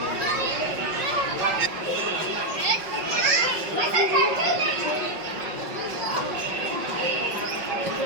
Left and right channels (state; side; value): late; left; 5.5 ms